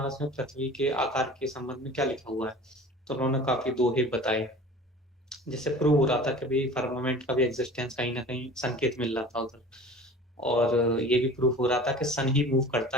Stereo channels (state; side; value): normal; both; correlation 0.41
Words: में पृथ्वी के आकार के संबंध में क्या लिखा हुआ है। तो उन्होंने काफी दोहे बताए, जिससे प्रूव हो रहा था कि भाई फर्मामेंट का भी एग्जिस्टेंस कहीं ना कहीं संकेत मिल रहा था उधर। और ये भी प्रूफ हो रहा था कि सन ही मूव